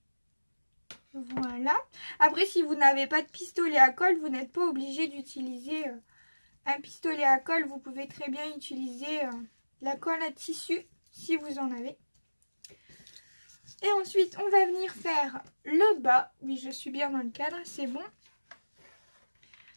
Voilà. Après, si vous n'avez pas de pistolet à colle, vous n'êtes pas obligé d'utiliser un pistolet à colle. Vous pouvez très bien utiliser la colle à tissu si vous en avez. Et ensuite, on va venir faire le bas. Oui, je suis bien dans le cadre, c'est bon.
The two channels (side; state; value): both; inverted; correlation -1.00